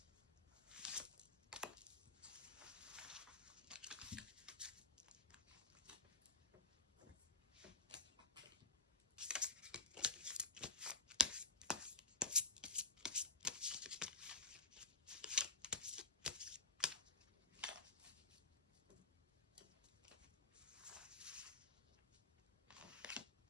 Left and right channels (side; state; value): right; quieter; 4.2 dB